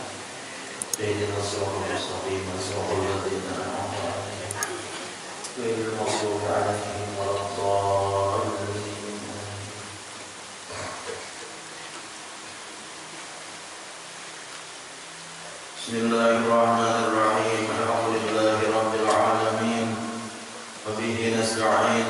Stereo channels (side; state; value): both; identical; correlation 1.00